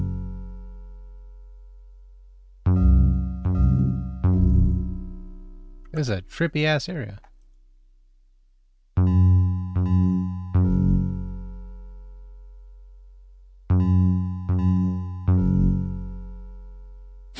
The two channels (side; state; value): both; identical; correlation 1.00